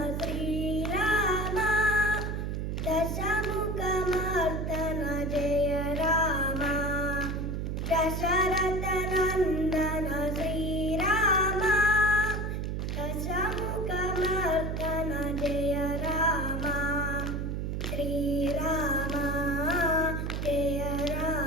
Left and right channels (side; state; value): right; noise; hum, 2 dB below the sound